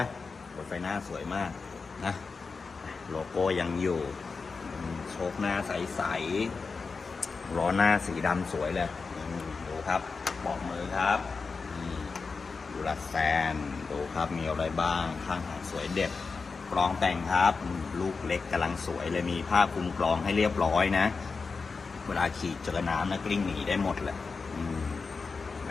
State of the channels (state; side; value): quieter; right; 4.6 dB